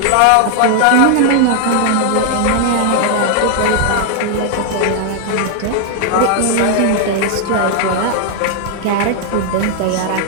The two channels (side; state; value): both; different; correlation 0.00